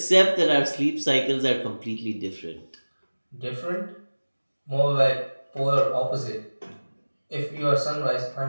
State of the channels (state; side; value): inverted; both; correlation -1.00